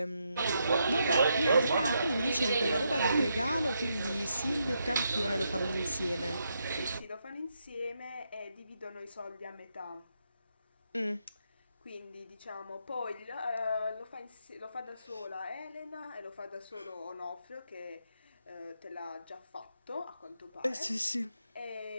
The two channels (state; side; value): inverted; both; correlation -0.81